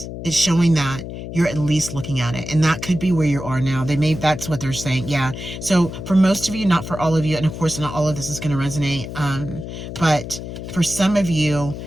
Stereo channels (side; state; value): left; noise; hum, 9 dB below the sound